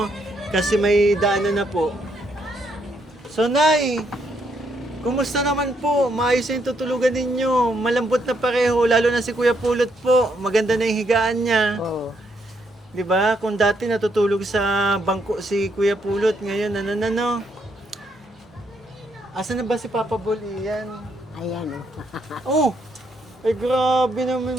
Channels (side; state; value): both; normal; correlation 0.74